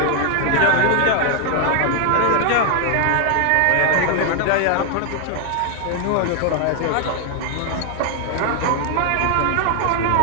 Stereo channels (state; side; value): different; both; correlation 0.00